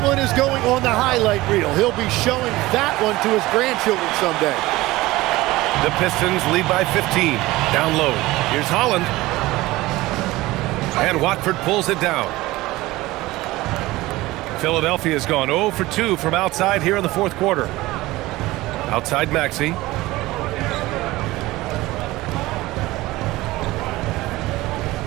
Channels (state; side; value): quieter; left; 18.8 dB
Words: one is going on the highlight reel. He'll be showing that one to his grandchildren someday. The Pistons lead by 15. Down low. Here's Holland. And Watford pulls it down. Philadelphia's gone 0 for 2 from outside here in the fourth quarter. Outside Maxey.